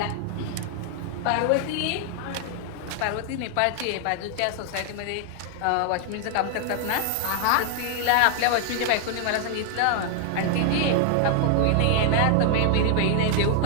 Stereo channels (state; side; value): different; both; correlation 0.00